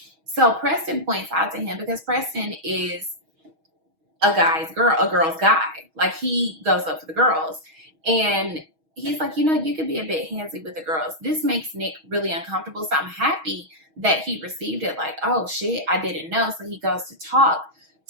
So Preston points out to him because Preston is a girl's guy. Like, he goes up for the girls. And he's like, you could be a bit handsy with the girls. This makes Nick really uncomfortable. So I'm happy that he received it like, oh shit, I didn't know. So he goes to talk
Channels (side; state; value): left; late; 6.3 ms